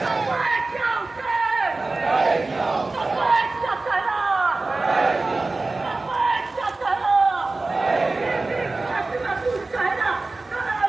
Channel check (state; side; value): quieter; left; 3.4 dB